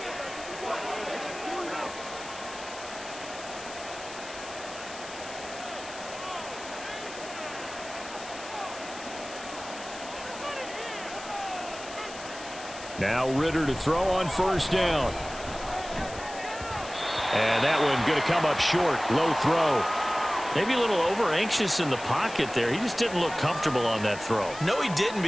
Now Ritter to throw on 1st down. And that one going to come up short. Low throw. Maybe a little over-anxious in the pocket there. He just didn't look comfortable on that throw. No, he didn't,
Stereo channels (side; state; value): left; noise; hiss, 14 dB below the sound